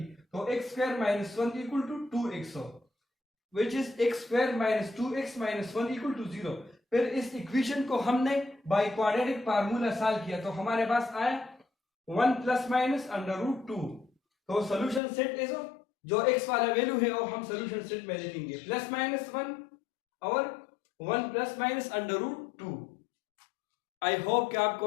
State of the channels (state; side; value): drops out; right; at 15.0 s